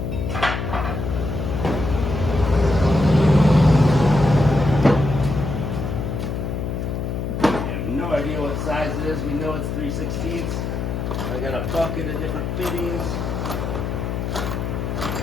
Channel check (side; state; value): left; noise; hum, 3 dB below the sound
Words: No idea what size it is. We know it's 3/16. I got a bucket of different fittings.